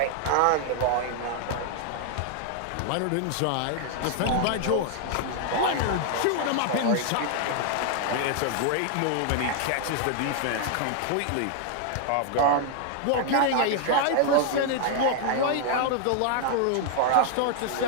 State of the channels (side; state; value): both; different; correlation 0.00